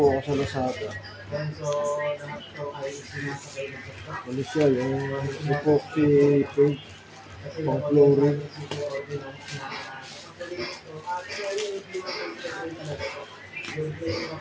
ako sa Lazada. Ano siya, yung epoxy paint, pang flooring.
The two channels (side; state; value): both; identical; correlation 1.00